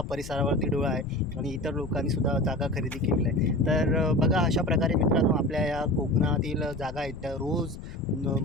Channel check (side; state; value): left; noise; rumble, 12 dB below the sound